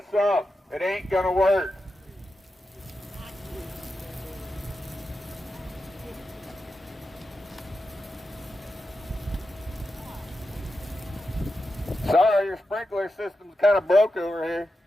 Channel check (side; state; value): both; normal; correlation 0.89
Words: up. It ain't gonna work. Sorry, your sprinkler system's kind of broke over here.